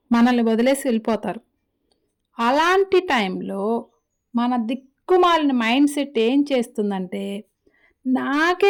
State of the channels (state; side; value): identical; both; correlation 1.00